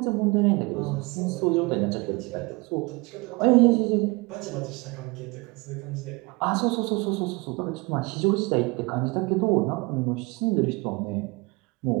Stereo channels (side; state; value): left; quieter; 26.3 dB